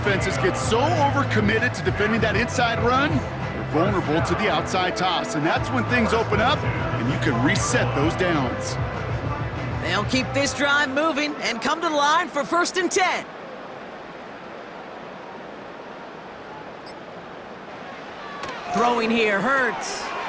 get so overcommitted to defending that inside run, they're vulnerable to the outside toss. And that's when things open up and you can reset those downs. They'll keep this drive moving and come to the line for 1st and 10. Throwing here, Hurts.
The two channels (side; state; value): both; identical; correlation 1.00